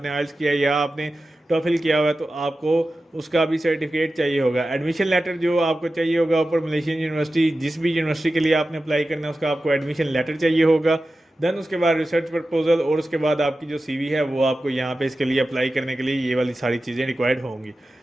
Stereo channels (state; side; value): normal; both; correlation 0.94